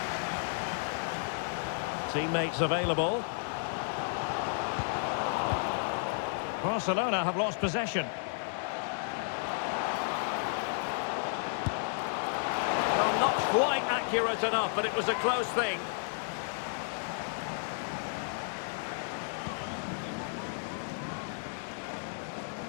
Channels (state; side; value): silent; right; digital silence